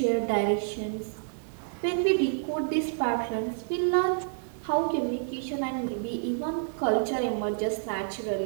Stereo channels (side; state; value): left; silent; digital silence